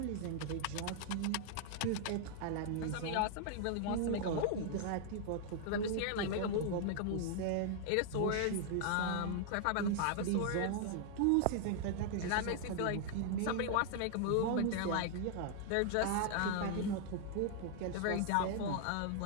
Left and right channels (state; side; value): different; both; correlation -0.01